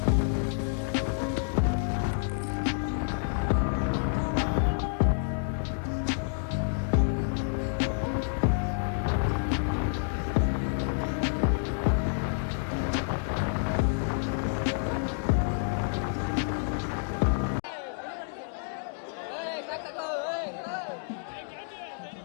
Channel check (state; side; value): silent; right; digital silence